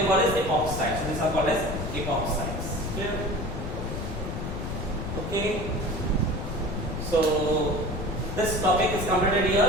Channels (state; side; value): noise; left; rumble, 5 dB below the sound